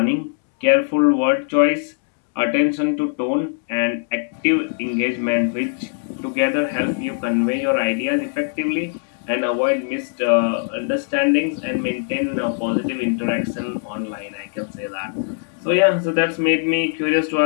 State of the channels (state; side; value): silent; right; digital silence